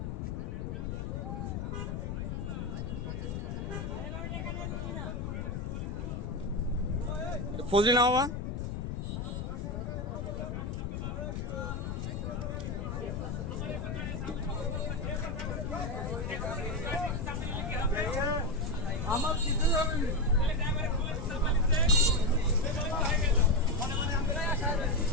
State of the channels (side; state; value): left; noise; rumble, 3 dB below the sound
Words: ফজলি না মামা? আমার